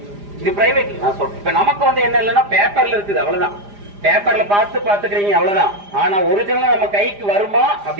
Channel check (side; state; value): left; late; 4.9 ms